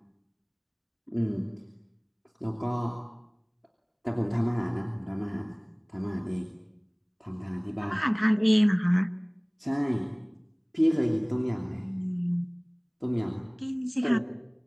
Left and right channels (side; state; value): both; identical; correlation 1.00